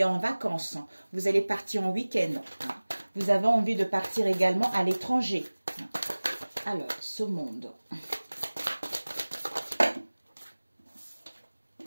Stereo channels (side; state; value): both; inverted; correlation -1.00